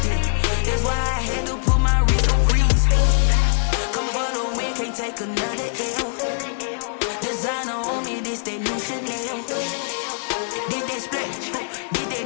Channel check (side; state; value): right; silent; digital silence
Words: Yeah, that's why I had to put my wrist on freeze. Coming for the win, can't take another L. Designer on me, this that new Chanel. Did that split, did